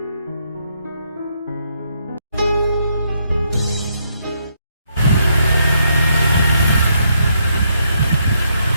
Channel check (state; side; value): inverted; both; correlation -0.75